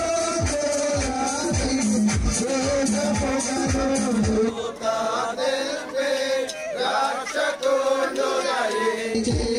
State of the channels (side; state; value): both; identical; correlation 1.00